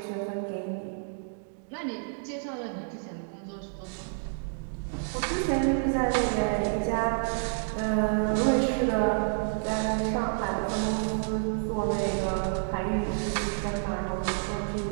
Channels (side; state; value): left; silent; digital silence